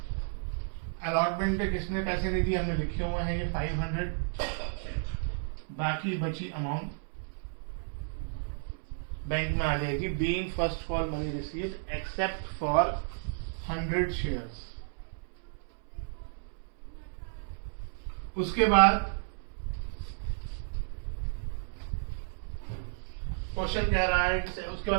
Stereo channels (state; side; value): silent; left; 56 dB below the other